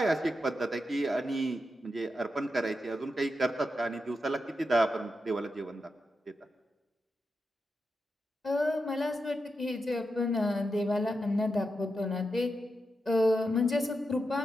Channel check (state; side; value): normal; both; correlation 0.87